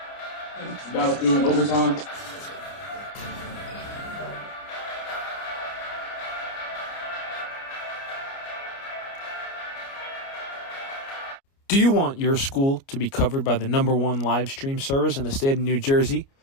It's about doing overtime. Do you want your school to be covered by the #1 live stream service in the state of New Jersey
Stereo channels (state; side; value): late; right; 29 ms